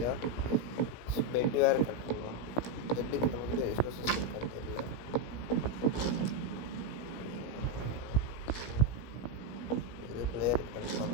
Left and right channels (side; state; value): right; late; 17 ms